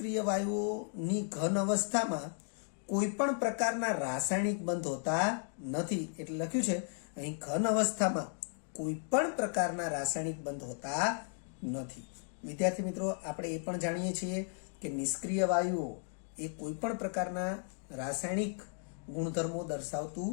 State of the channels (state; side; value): silent; right; 54 dB below the other